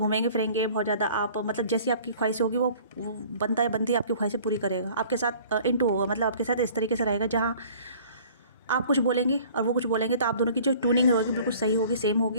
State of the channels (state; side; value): inverted; both; correlation -0.50